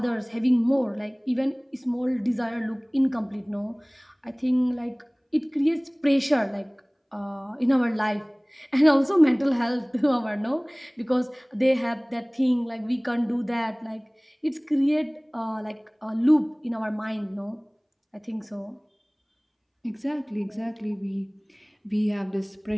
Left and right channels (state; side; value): identical; both; correlation 1.00